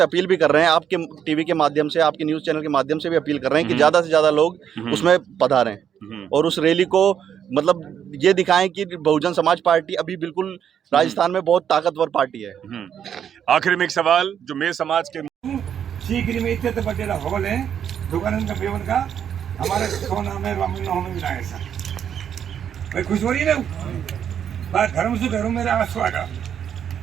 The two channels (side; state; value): left; quieter; 8.8 dB